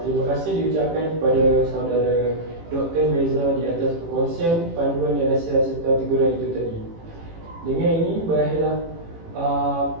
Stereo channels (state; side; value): late; left; 18 ms